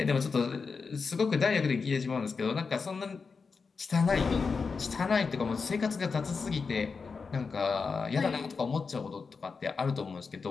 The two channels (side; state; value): right; quieter; 5.0 dB